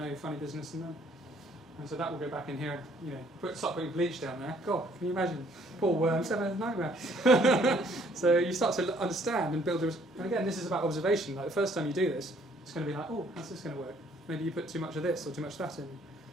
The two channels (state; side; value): normal; both; correlation 0.62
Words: funny business in them. And so that will go back in here, start putting bleach down there. God, can you imagine? Poor worms having a nightmare. So you start to understand and build. And again, this is about observation. Like the first time you do this, it's going to be like, oh, how's this going to work? Maybe you put too much of this or too much of that in.